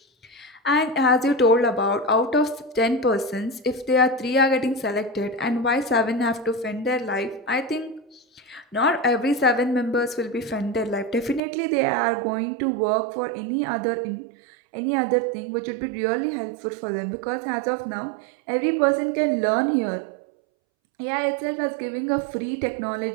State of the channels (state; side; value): drops out; left; at 11.4 s